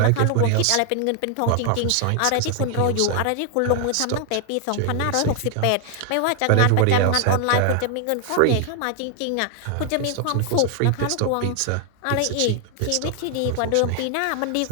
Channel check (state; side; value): different; both; correlation 0.00